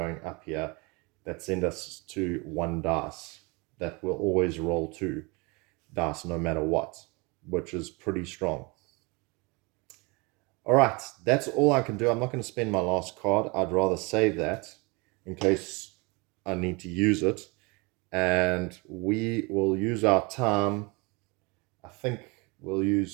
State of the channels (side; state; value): left; quieter; 28.1 dB